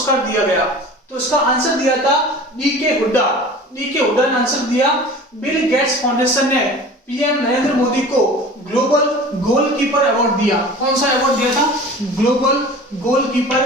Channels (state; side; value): normal; both; correlation 0.40